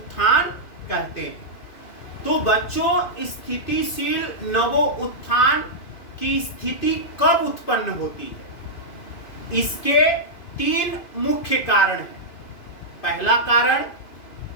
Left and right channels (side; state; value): right; late; 2.5 ms